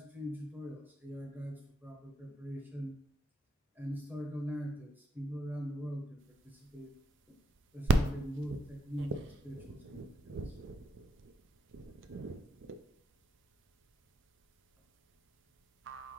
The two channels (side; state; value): both; normal; correlation 0.78